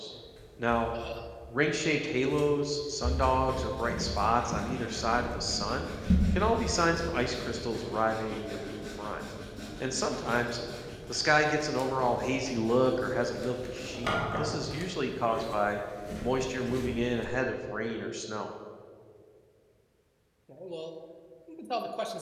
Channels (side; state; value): both; identical; correlation 1.00